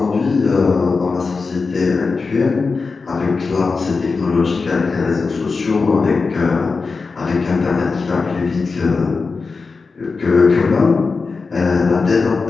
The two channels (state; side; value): quieter; right; 4.4 dB